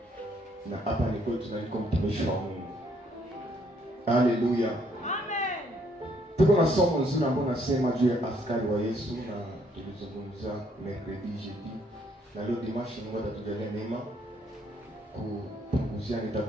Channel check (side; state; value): both; normal; correlation 0.68